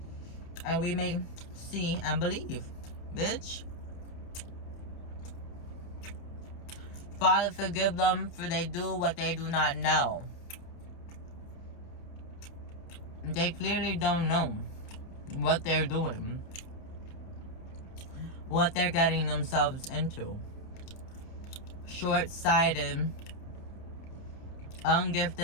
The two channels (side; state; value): right; late; 29 ms